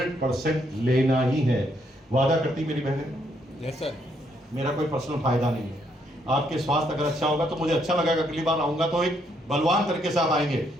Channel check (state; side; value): normal; both; correlation 0.73